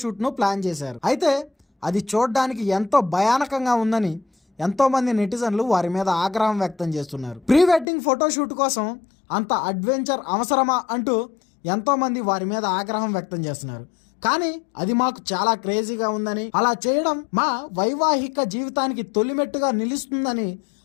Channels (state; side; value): drops out; right; at 7.9 s